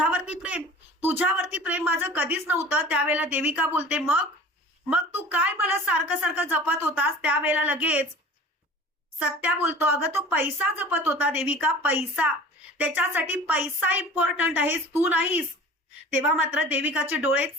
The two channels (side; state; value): both; normal; correlation 0.41